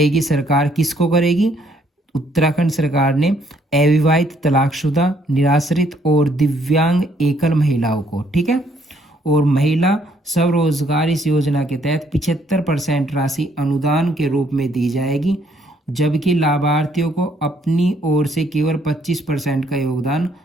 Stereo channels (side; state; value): both; normal; correlation 0.67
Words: सरकार। किसको करेगी? उत्तराखंड सरकार ने अविवाहित, तलाकशुदा, निराश्रित और दिव्यांग एकल महिलाओं को, ठीक है। और महिला स्वरोजगार इस योजना के तहत 75% राशि अनुदान के रूप में दी जाएगी, जबकि लाभार्थियों को अपनी ओर से केवल 25% का योगदान